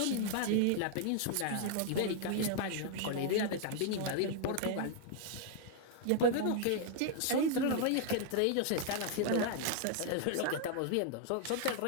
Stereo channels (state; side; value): different; both; correlation 0.00